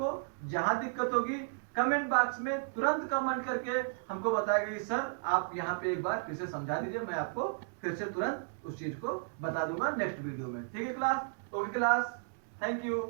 जहां दिक्कत होगी कमेंट बॉक्स में तुरंत कमेंट करके हमको बताएगा कि सर आप यहाँ पे एक बार फिर से समझा दीजिए, मैं आपको फिर से तुरंत उस चीज को बता दूंगा नेक्स्ट वीडियो में। ठीक है class. Okay class, thank you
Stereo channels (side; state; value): left; silent; digital silence